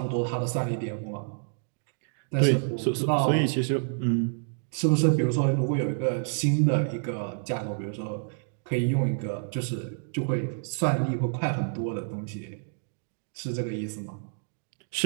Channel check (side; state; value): left; silent; digital silence